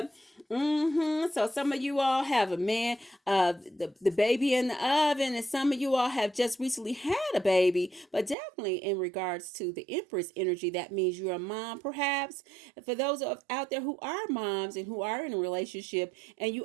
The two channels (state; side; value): drops out; left; at 8.3 s